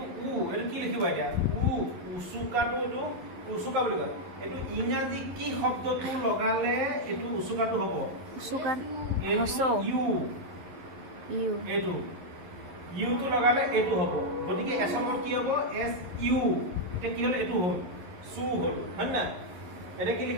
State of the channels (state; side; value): late; left; 11 ms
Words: এইটো কি লিখিবা এতিয়া উচুকাটো এইটো উচুকা বুলি কয় এইটো ইংৰাজী কি শব্দটো লগালে এইটো উচুকাটো হ'ব এইটো ইউটো লগালে এইটো হ'ব গতিকে এছমত কি হ'ব এছ ইউ এতিয়া কি হ'ল এইটো হ'ল চু হ'ল হয় না এতিয়া কি